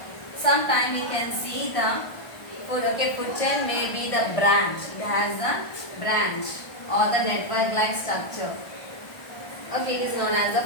sometime we can see the food. Okay, food chain may be the branch. It has the branch or the network like structure. Okay, it is known as the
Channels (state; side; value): late; right; 1.4 ms